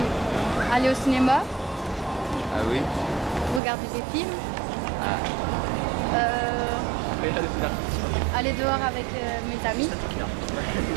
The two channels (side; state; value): left; drops out; at 3.6 s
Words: Aller au cinéma, Ah oui? regarder des films, Ah. aller dehors avec mes amis,